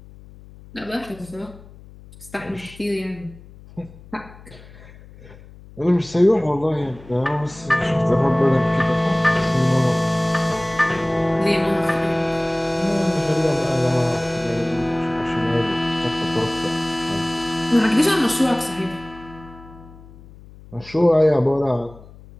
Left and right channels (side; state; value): left; noise; hum, 21 dB below the sound